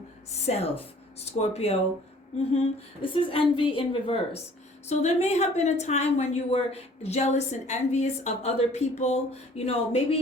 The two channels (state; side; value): normal; both; correlation 0.53